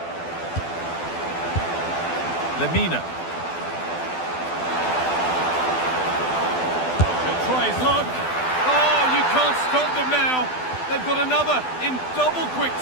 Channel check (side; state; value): right; late; 12 ms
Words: Lemina. He'll try his luck. Oh, you can't stop them now. They've got another in double quick